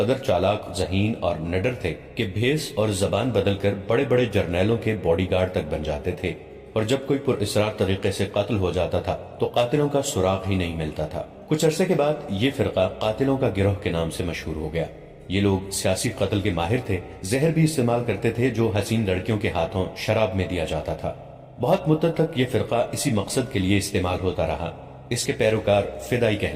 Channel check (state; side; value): identical; both; correlation 1.00